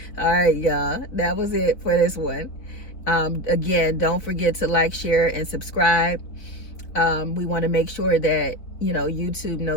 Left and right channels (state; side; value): late; right; 4.0 ms